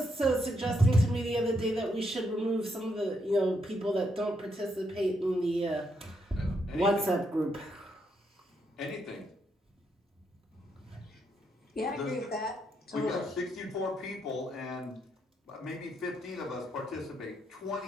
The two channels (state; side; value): normal; both; correlation 0.78